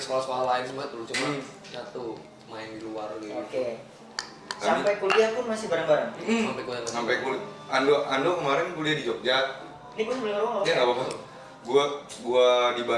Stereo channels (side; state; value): both; identical; correlation 1.00